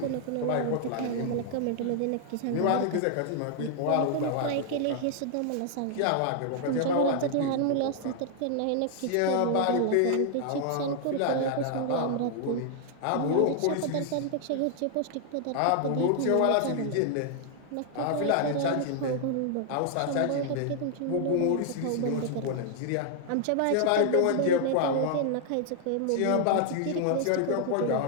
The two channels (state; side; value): different; both; correlation 0.00